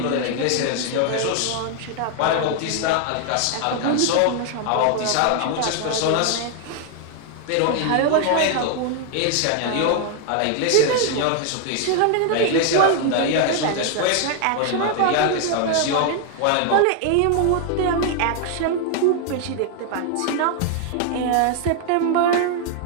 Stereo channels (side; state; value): both; different; correlation 0.00